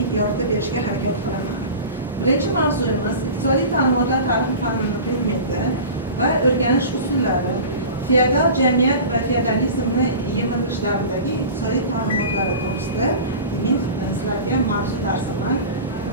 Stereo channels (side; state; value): both; inverted; correlation -0.34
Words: yordam berishga harakat qilaman. Birinchi mavzuyimiz iqtisodiy ta'limotlar tarixi fanini predmeti va o'rganish usullari, feodal jamiyat va feodalizmni yemirish davridagi iqtisodiy ta'limotlari to'g'risida demak sizlarga mavzu darsini